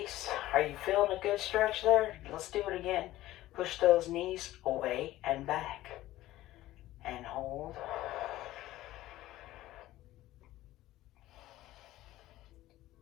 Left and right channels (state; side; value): quieter; right; 15.6 dB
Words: Are you feeling a good stretch there? Let's do it again. Push those knees away and back. And hold.